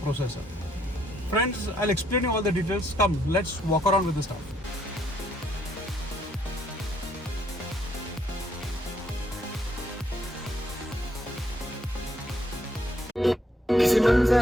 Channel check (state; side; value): normal; both; correlation 0.71